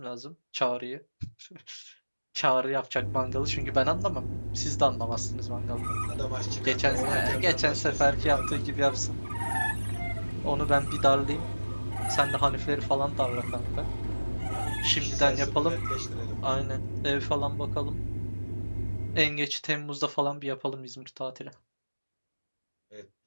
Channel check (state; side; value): inverted; both; correlation -1.00